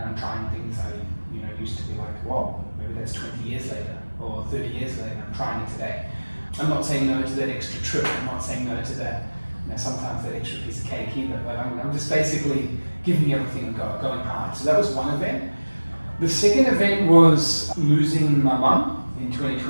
I'm trying things I used to be like, whoa, maybe that's 20 years later or 30 years later. I'm trying it today. I'm not saying no to that extra trip. I'm not saying no to that, sometimes that extra piece of cake either. But I'm just basically giving everything a go, going hard. So that was one event. The second event was losing my mum in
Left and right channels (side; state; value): both; inverted; correlation -1.00